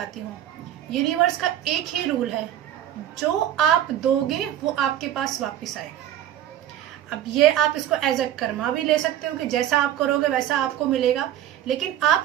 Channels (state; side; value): quieter; left; 11.7 dB